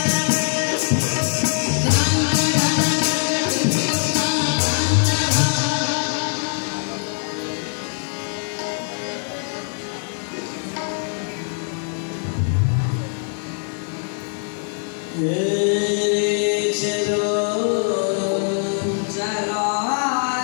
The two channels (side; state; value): right; silent; 64 dB below the other